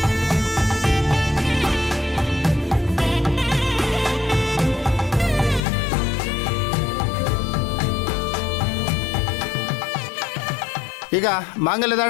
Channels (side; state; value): right; drops out; at 5.6 s